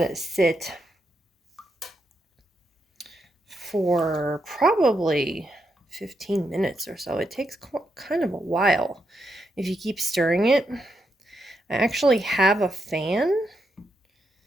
it sit for probably 15 minutes or so. It takes kind of a while if you keep stirring it. I actually have a fan,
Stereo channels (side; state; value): both; normal; correlation 0.82